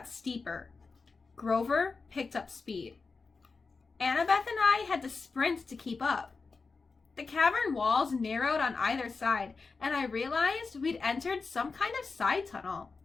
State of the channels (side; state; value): right; quieter; 4.4 dB